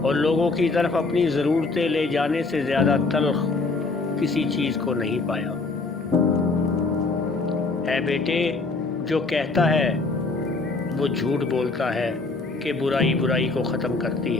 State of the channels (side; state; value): right; quieter; 3.7 dB